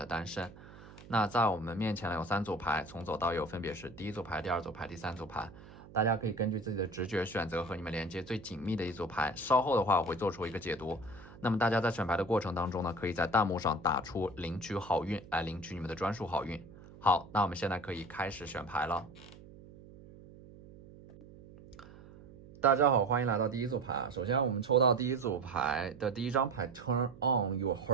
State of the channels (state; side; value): noise; right; hum, 19 dB below the sound